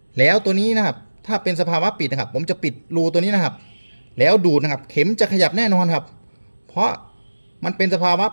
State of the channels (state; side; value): inverted; both; correlation -1.00